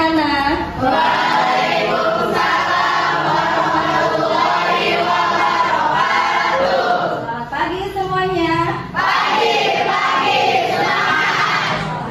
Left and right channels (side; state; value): both; identical; correlation 1.00